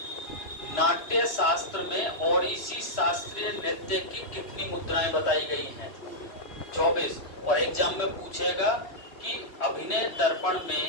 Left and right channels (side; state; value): right; late; 3.0 ms